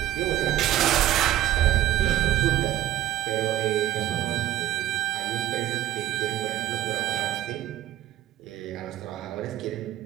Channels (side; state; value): left; quieter; 13.5 dB